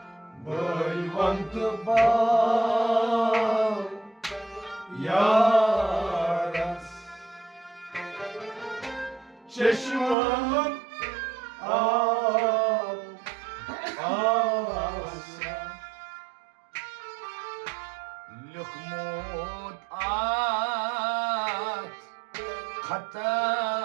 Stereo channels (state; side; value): drops out; left; at 10.2 s